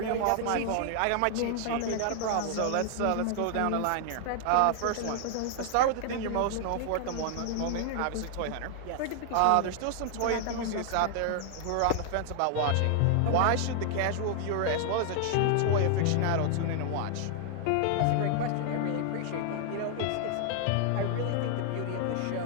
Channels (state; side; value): different; both; correlation 0.00